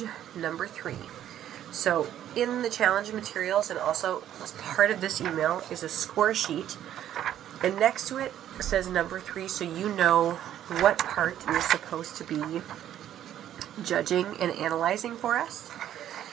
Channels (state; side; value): quieter; left; 11.3 dB